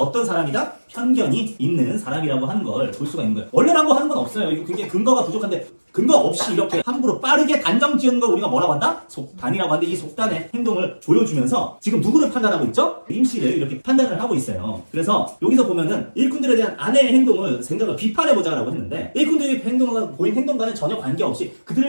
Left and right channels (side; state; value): both; inverted; correlation -1.00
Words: 사람이다? 편견이 있는 사람이라고 하는 걸 볼 수가 있는 거예요. 원래라고 하는 건 없어요. 이거 굉장히 근거가 부족한데 근거 없이 이렇게 함부로 빠르게 단정 지은 걸 우리가 뭐라고 한다? 속단이라고 하는데 이 속단의 행동을 보여주면서 지금 누구를 판단하고 있죠? 임씨를 이렇게 판단을 하고 있어요. 그래서 여기서 보면은 일꾼들에 대한 아내의 행동을 생각을 비판해보자라고 했는데 일꾼들의 보인 행동과는 전혀 관계없이